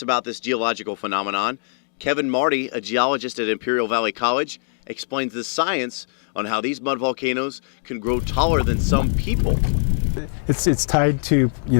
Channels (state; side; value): silent; right; digital silence